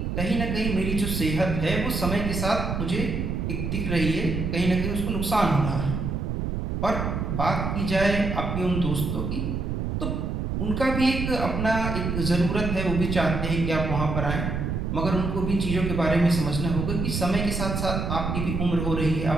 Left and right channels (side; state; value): right; noise; rumble, 2 dB below the sound